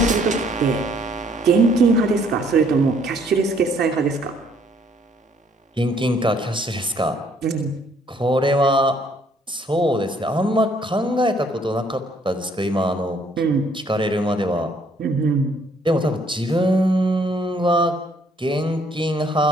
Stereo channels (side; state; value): both; normal; correlation 0.64